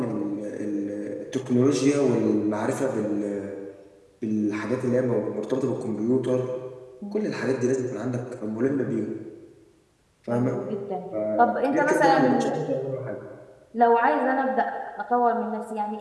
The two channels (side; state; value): both; identical; correlation 1.00